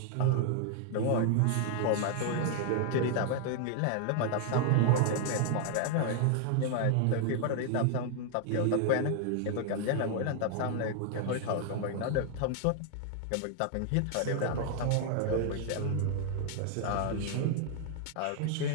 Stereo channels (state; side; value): different; both; correlation 0.00